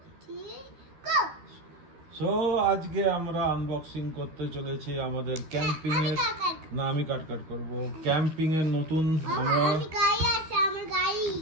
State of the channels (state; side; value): late; left; 12 ms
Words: 3 go so আজকে আমরা unboxing করতে চলেছি আমাদের ক্যাম্পিং এর না আমি কাট করব ক্যাম্পিং এর নতুন আমরা গাড়ি আছে আমার গাড়ি